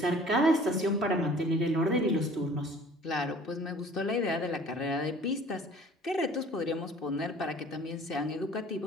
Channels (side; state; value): both; normal; correlation 0.49